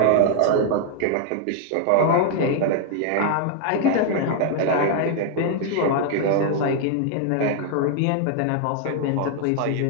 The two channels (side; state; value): both; different; correlation 0.00